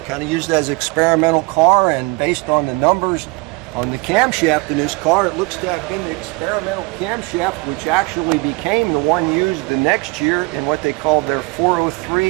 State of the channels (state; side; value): quieter; left; 26.1 dB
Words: of used as an experimental car, and based on the numbers on the camshaft in this car, it looks to have been the experimental camshaft, which actually became the one used the next year in what they called their